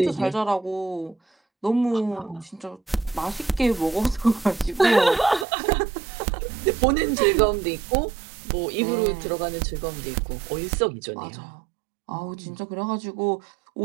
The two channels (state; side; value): drops out; left; at 5.5 s